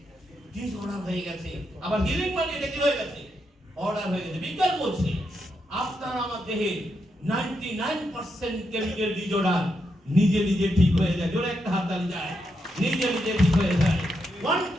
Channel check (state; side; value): normal; both; correlation 0.82